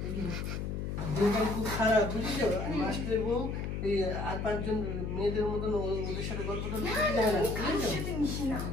দিনটা খুব খারাপ, বুঝেছো? আর মাস্টারের বউ এই আর পাঁচজন মেয়েদের মতন ওদের সাথে গল্প টল্প করতে যায় না,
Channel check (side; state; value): left; noise; hum, 3 dB below the sound